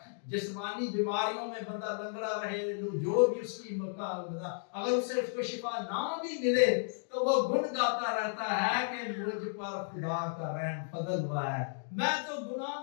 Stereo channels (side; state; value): right; silent; digital silence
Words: جسمانی بیماریوں میں بندہ لنگڑا رہے، جو بھی اس کی اگر اسے اس کو شفا نہ بھی ملے تو وہ گن گاتا رہتا ہے کہ مجھ پر خدا کا رحم فضل ہوا ہے۔ میں تو گناہ